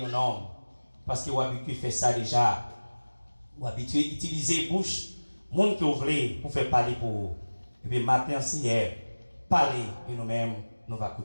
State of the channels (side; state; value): both; inverted; correlation -1.00